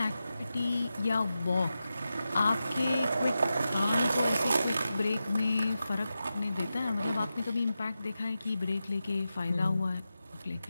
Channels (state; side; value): inverted; both; correlation -0.91